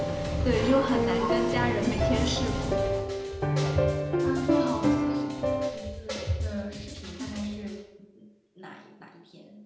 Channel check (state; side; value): identical; both; correlation 1.00